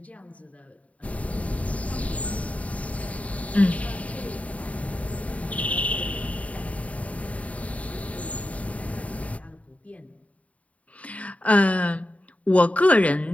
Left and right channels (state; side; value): late; right; 0.067 ms